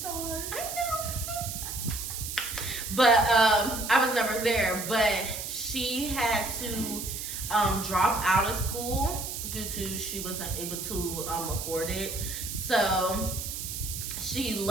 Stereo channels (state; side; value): noise; right; hiss, 6 dB below the sound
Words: I know. But I was never there. But she had to drop out of school due to she wasn't able to afford it. So she